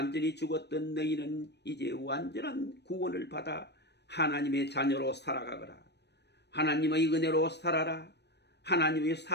죽었던 너희는 이제 완전한 구원을 받아 하나님의 자녀로 살아가거라. 하나님의 은혜로 살아라. 하나님의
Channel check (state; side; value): late; right; 0.49 ms